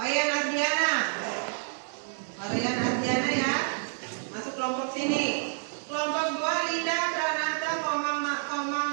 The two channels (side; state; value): left; silent; 59 dB below the other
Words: Ardiana. Wayan Ardiana ya, masuk kelompok sini. Kelompok 2 Linda, Pranata, Komang